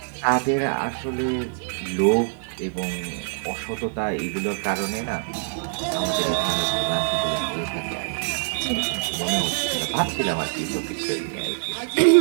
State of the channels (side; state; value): left; silent; digital silence